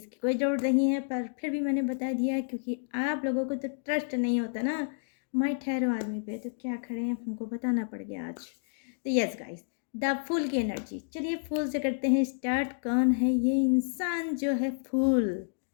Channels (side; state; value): right; silent; digital silence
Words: कोई ज़रूरत नहीं है, पर फिर भी मैंने बता दिया क्योंकि आप लोगों को तो ट्रस्ट नहीं होता ना माई ठहरो आदमी पे, तो क्या खड़े हैं, हमको बताना पड़ गया आज। तो यस गाइस, द फूल की एनर्जी, चलिए फूल से करते हैं स्टार्ट। कौन है ये इंसान जो है फूल,